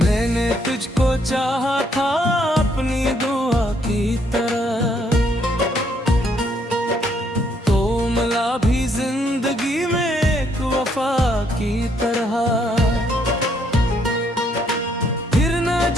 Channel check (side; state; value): both; normal; correlation 0.70